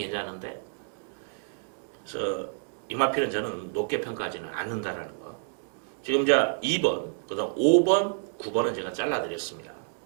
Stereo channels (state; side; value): silent; left; 59 dB below the other